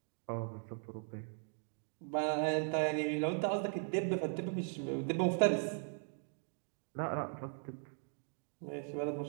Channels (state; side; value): silent; left; 52 dB below the other